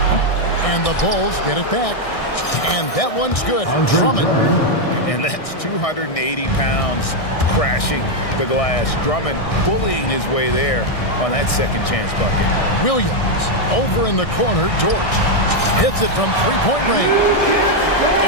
And the Bulls get it back. And that one's good. Drummond. And that's 280 pounds crashing the glass. Drummond bullying his way there on that second chance bucket. Williams over in the corner. Dort hits it from three-point range.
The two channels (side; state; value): right; late; 1.6 ms